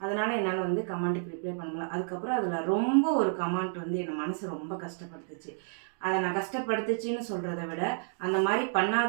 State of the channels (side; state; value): left; silent; 57 dB below the other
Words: அதனால் என்னால் வந்து கமெண்ட்டுக்கு ரிப்ளை பண்ண முடியல. அதுக்கப்புறம் அதில் ரொம்ப ஒரு கமெண்ட் வந்து என் மனசு ரொம்ப கஷ்டப்படுத்துச்சு. அதை நான் கஷ்டப்படுத்துச்சின்னு சொல்கிறத விட அந்த மாதிரி